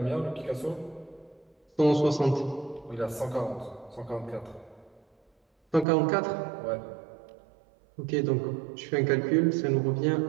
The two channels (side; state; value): left; drops out; at 5.9 s